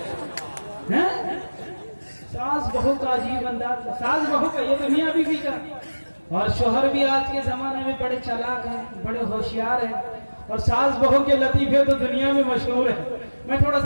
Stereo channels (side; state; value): both; inverted; correlation -1.00